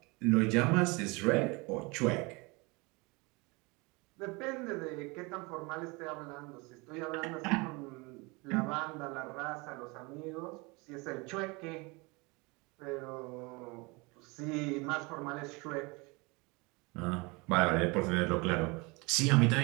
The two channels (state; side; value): quieter; left; 26.8 dB